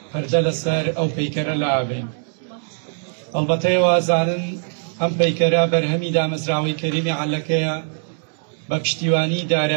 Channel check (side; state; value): left; silent; digital silence